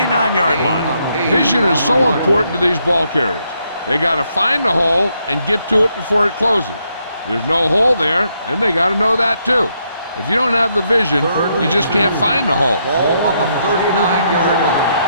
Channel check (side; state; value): both; inverted; correlation -0.76